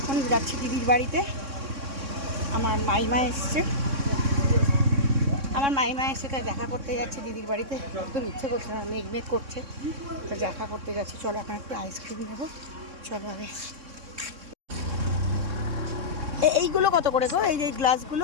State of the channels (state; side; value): late; left; 3.6 ms